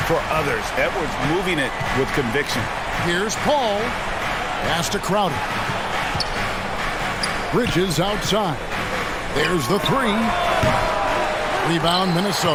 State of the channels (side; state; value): both; identical; correlation 1.00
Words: for others. Edwards moving it with conviction. Here's Paul. Pass to Crowder. Bridges outside. There's the 3. Rebound